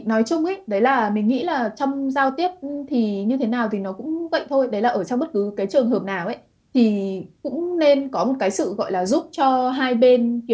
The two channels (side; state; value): both; identical; correlation 1.00